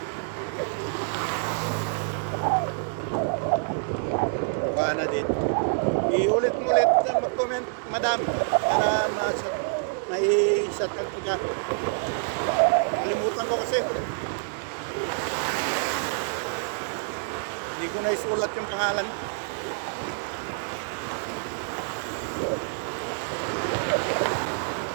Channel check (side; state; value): left; silent; digital silence